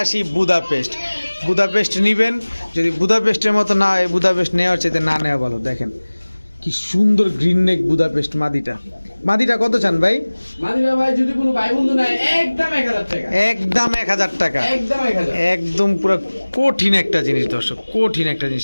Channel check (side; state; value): both; inverted; correlation -1.00